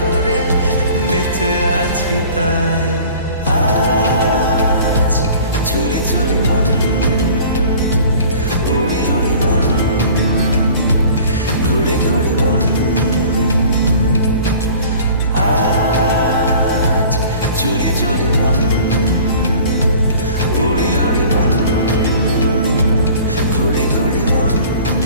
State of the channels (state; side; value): inverted; both; correlation -0.46